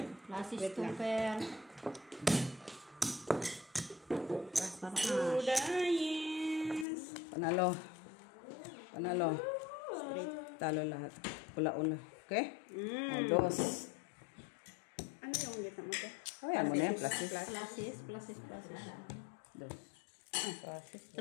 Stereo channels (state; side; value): drops out; right; at 6.9 s